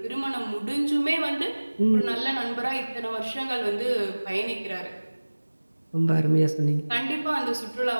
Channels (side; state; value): both; inverted; correlation -1.00